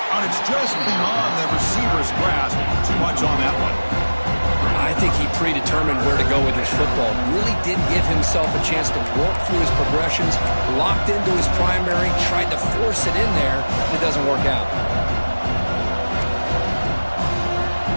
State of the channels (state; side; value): inverted; both; correlation -1.00